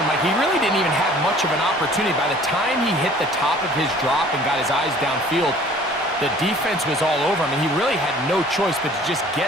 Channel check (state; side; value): normal; both; correlation 0.51